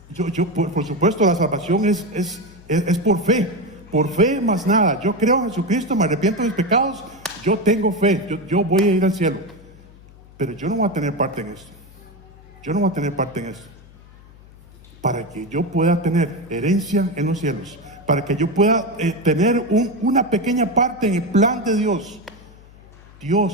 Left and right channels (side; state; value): left; noise; hum, 23 dB below the sound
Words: Por supuesto, la salvación es por fe. por fe más nada. Yo creo en Jesucristo, me arrepiento de mis pecados, yo tengo fe, yo voy a ir al cielo. Pero yo no voy a tener parte en esto. Yo no voy a tener parte en esto. Para que yo pueda tener herencia en los cielos, para que yo pueda tener una pequeña parte en el plan de Dios,